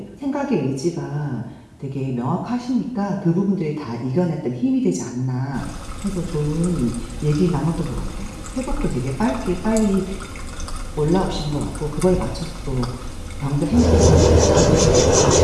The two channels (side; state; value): both; identical; correlation 1.00